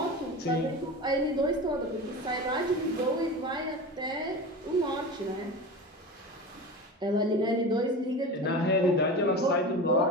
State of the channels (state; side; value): normal; both; correlation 0.30